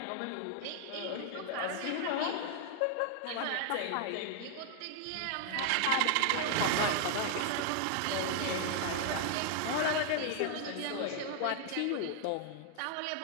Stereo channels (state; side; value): different; both; correlation 0.00